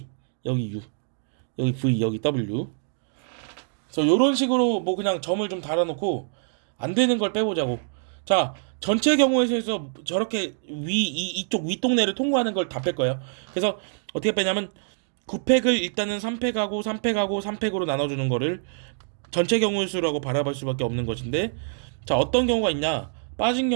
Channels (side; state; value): left; silent; digital silence